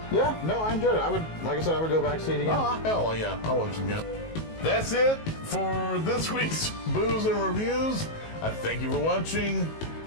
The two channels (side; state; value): right; late; 19 ms